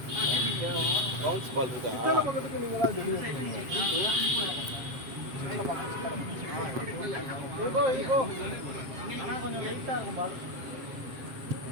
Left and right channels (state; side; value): late; left; 7.5 ms